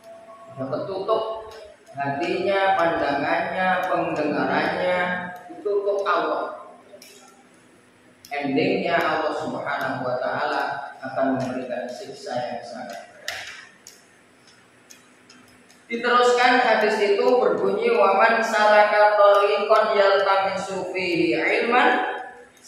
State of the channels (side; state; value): both; identical; correlation 1.00